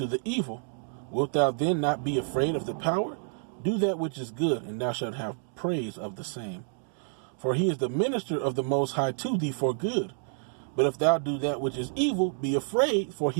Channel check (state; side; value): silent; left; 59 dB below the other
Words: the evil. Wilt thou then not be afraid of the power? Do that which is good, and thou shalt have praise of the same. For he is the minister of the Most High to thee for good. But if thou do that which is evil, be afraid, for